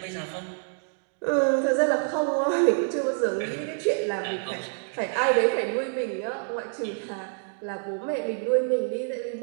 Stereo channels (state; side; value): silent; left; 60 dB below the other